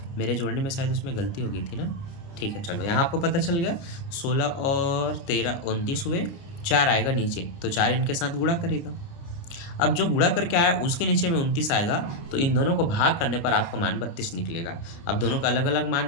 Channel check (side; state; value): right; late; 30 ms